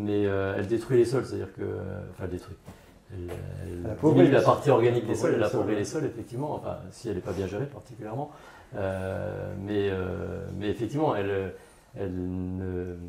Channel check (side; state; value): both; identical; correlation 1.00